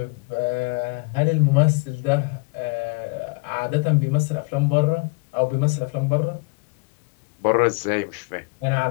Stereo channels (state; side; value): quieter; right; 29.6 dB